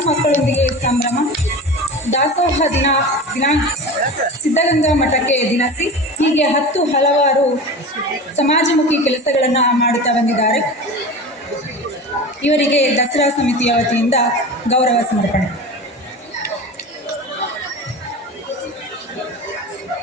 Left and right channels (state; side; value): normal; both; correlation 0.31